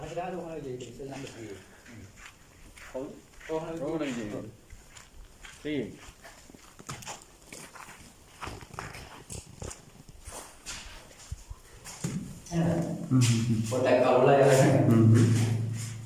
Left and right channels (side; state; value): both; identical; correlation 1.00